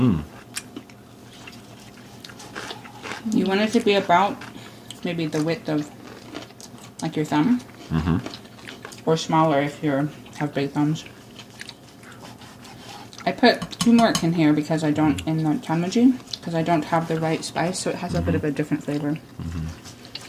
You want it to be about maybe the width of like your thumb, or smaller if you have big thumbs. I put turmeric in here because I don't, in the tanmuji, because I don't have the right spice, so it has a bit of a different flavor.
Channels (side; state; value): both; identical; correlation 1.00